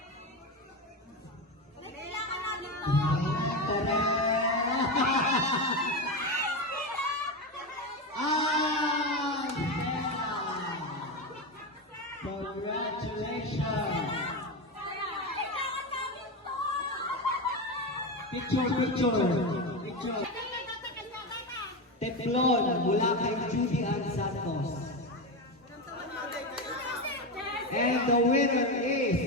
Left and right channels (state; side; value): normal; both; correlation 0.16